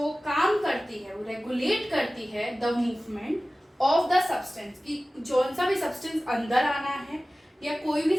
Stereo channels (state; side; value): normal; both; correlation 0.97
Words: काम करती है वो रेगुलेट करती है the movement of the substance, कि जौन सा भी सब्सटेंस अंदर आना है या कोई